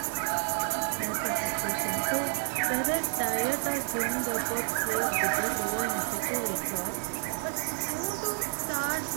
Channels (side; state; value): left; silent; 58 dB below the other